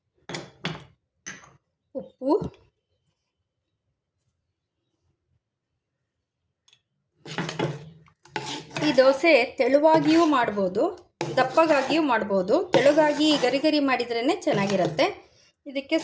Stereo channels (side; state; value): both; identical; correlation 1.00